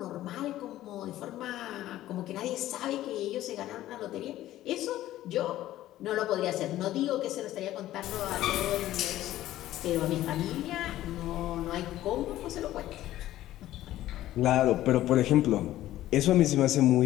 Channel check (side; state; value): right; quieter; 14.3 dB